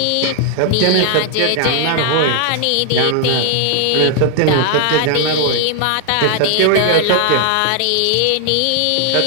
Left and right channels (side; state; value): both; different; correlation 0.00